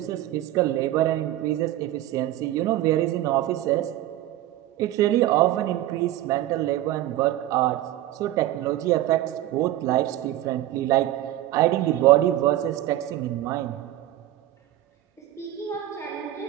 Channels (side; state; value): left; quieter; 14.1 dB